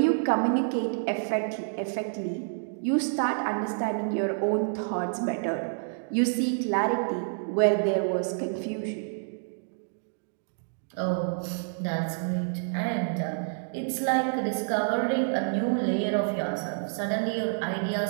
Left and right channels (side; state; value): left; silent; digital silence